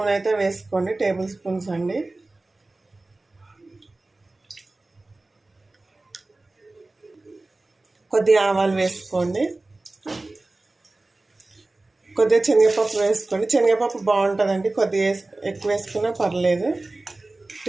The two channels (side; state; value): left; quieter; 3.0 dB